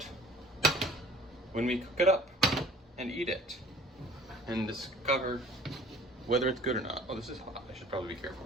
when we cook it up and eat it and discover whether it's good or not. Oh, this is hot. I should probably be careful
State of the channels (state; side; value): normal; both; correlation 0.50